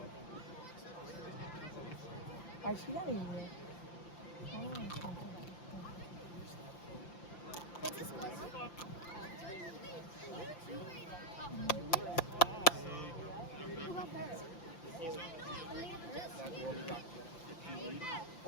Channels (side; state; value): right; late; 5.9 ms